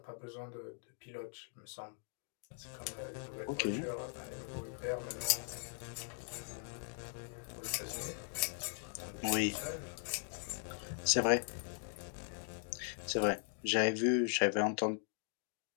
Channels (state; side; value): silent; right; 51 dB below the other